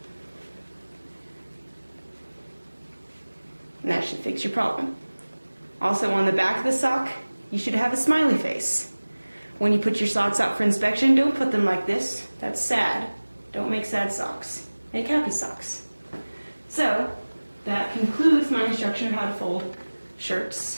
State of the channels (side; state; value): both; inverted; correlation -1.00